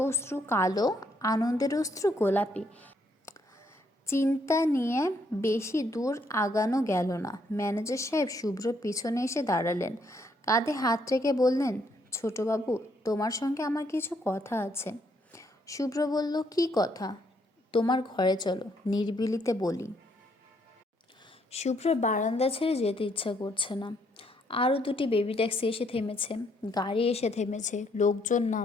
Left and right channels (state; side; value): normal; both; correlation 0.71